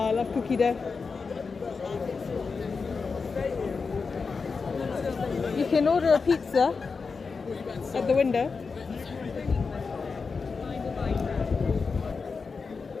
I love cookie dough. You can order a pizza at the window.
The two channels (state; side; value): quieter; right; 4.8 dB